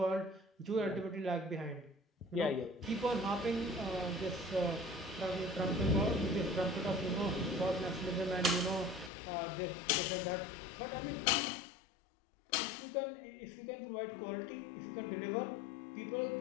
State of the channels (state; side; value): drops out; right; at 9.1 s